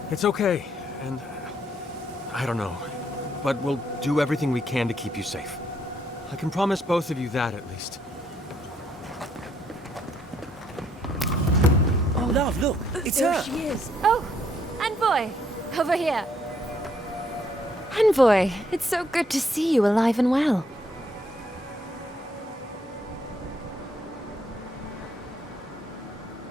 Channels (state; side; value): normal; both; correlation 0.70